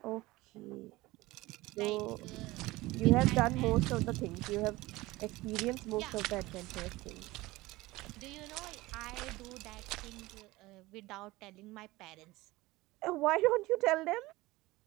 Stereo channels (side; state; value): left; quieter; 19.7 dB